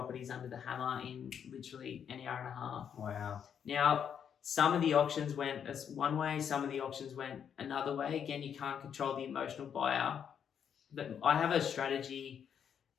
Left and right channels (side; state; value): right; quieter; 8.1 dB